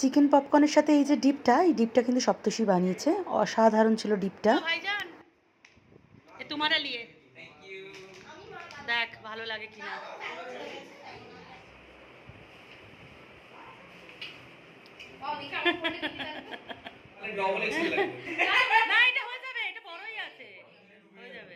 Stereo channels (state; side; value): identical; both; correlation 1.00